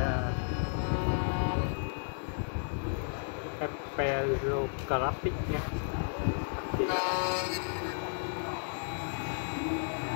Perographic nhé. Thì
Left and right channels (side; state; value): right; silent; 56 dB below the other